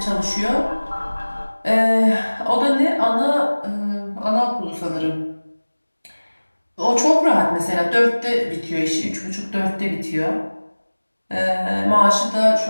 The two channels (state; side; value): inverted; both; correlation -1.00